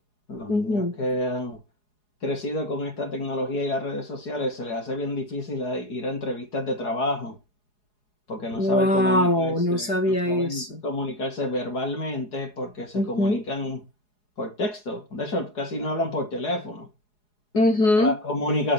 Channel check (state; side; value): late; right; 4.8 ms